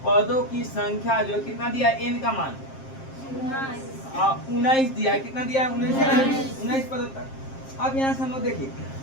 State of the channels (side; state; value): right; late; 7.5 ms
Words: जो कितना दिया? n का मान 19 दिया है। कितना दिया है? 19 पदों तक। अब यहाँ से हम लोग देखिए